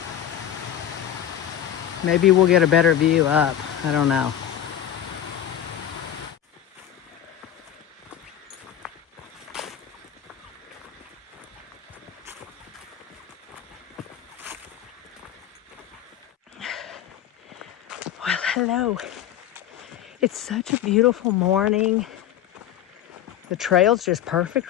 Maybe we'll get a better view up. I don't know. Hello. It's such a beautiful morning. The trail's just perfect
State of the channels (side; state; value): right; quieter; 10.7 dB